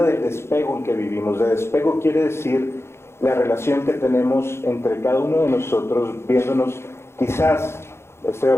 del despego en que vivimos. De despego quiere decir la relación que tenemos entre cada uno de nosotros, viéndonos, quizás, estoy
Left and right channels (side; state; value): right; late; 0.12 ms